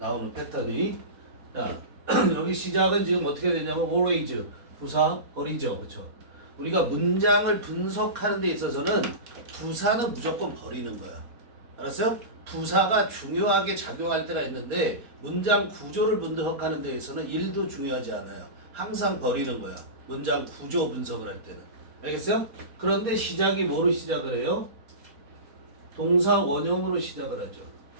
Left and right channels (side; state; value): left; late; 4.2 ms